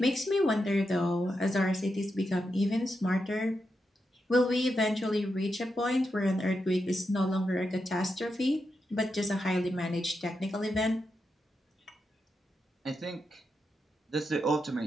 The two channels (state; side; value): normal; both; correlation 0.86